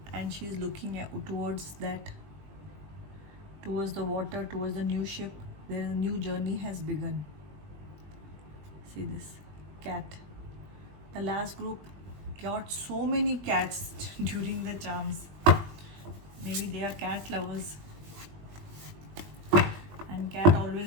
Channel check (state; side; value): late; left; 20 ms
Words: and she's looking towards that, towards the water, towards the new ship. There is a new journey has begun. See this, cat. The last group got so many cats during the charms. Maybe they are cat lovers. And cat